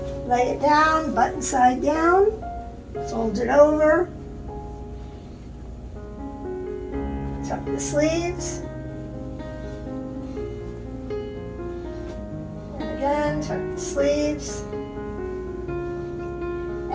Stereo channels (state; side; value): identical; both; correlation 1.00